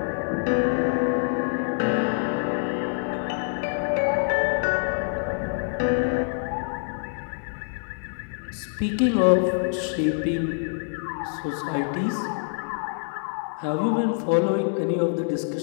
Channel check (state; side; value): silent; right; digital silence